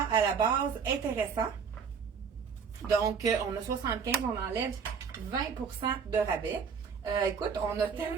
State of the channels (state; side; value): quieter; left; 6.3 dB